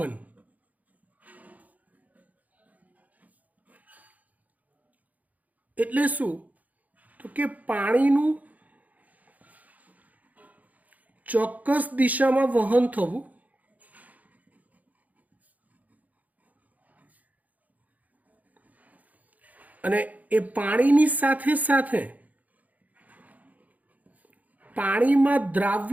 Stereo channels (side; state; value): left; late; 0.077 ms